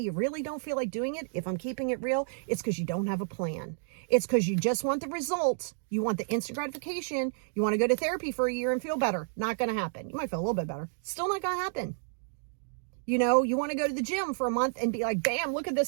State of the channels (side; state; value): left; silent; digital silence